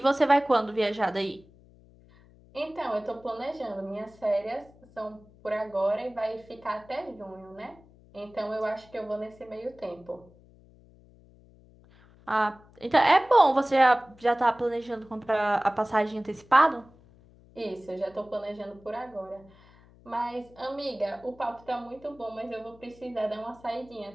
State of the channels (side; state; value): left; noise; hum, 26 dB below the sound